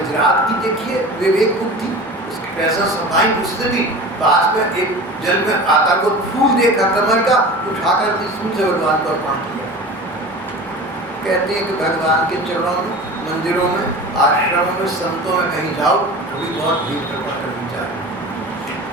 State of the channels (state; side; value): normal; both; correlation 0.36